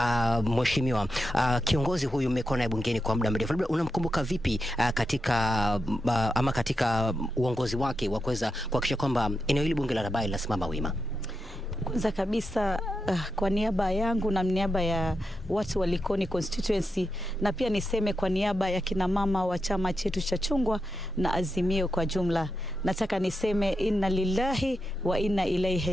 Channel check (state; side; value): normal; both; correlation 0.87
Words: mheshimiwa, kiongozi huyu mmekuwa naye bungeni kwa muda mrefu, labda unamkumbuka vipi katika uongozi wake wa kuweza kuhakikisha kwamba eneo hili bunge la Rabai linasimama wima? Kwanza kabisa kwa niaba yangu na niaba ya watu wa Likoni constituency, na pia niseme kwa niaba ya kina mama wa chama chetu cha chungwa na Azimio kwa jumla, nataka niseme inna lillahi wa inna